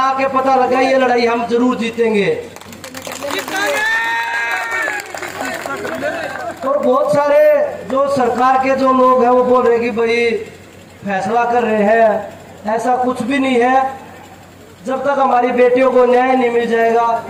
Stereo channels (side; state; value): both; identical; correlation 1.00